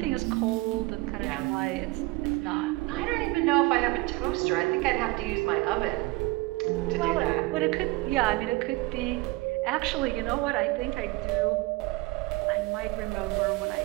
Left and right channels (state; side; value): quieter; left; 21.8 dB